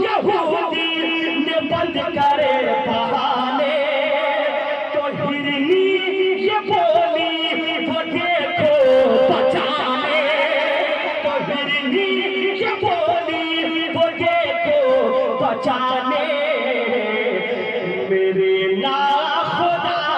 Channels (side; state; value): both; identical; correlation 1.00